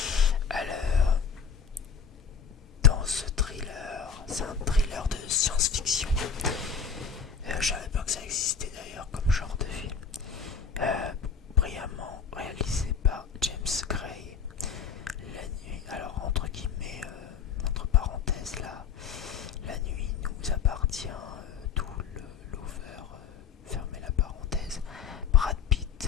Alors, dans ce thriller, c'est un thriller de science-fiction. Je savais pas que ça existait d'ailleurs comme genre de film. Brillamment réalisé par James Gray. La nuit, alors entre guillemets, entre parenthèses là, la nuit nous appartient, tout l'over, fermez la parenthèse. Brad Pitt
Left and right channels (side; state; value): right; quieter; 6.4 dB